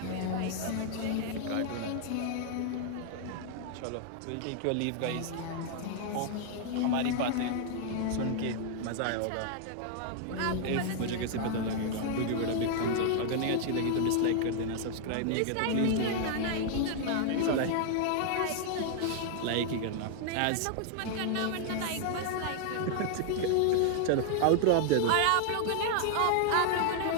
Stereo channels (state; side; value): different; both; correlation 0.00